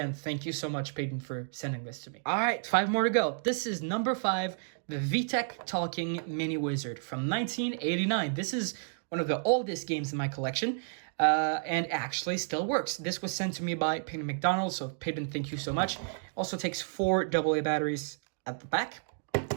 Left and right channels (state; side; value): silent; left; digital silence